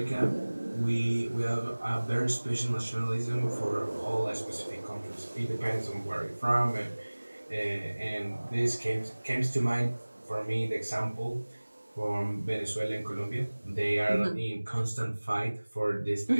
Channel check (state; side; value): inverted; both; correlation -1.00